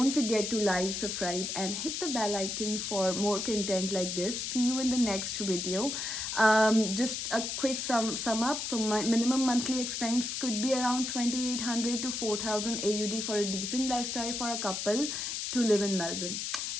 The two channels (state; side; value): noise; left; hiss, 3 dB below the sound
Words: forget to like, subscribe, and hit the bell icon for more content like this. See you in the next video. Just a quick sum up. So my minimum monthly expense could be around 2800 to 4000 AUD for a decent lifestyle for a couple to live in Melbourne.